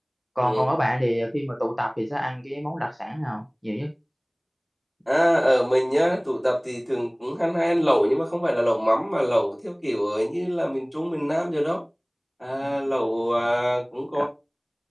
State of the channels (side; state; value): both; identical; correlation 1.00